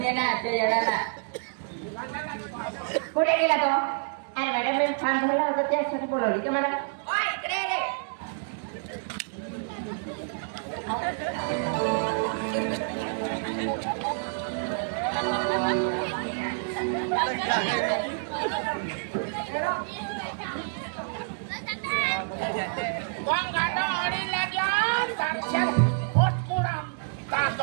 ये ना त्या येणार कुठे गेला तो अरे मॅडम मी फॉर्म भरला होता त्यासाठी बोलवली का मला ओय इकडे रे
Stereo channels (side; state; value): left; silent; digital silence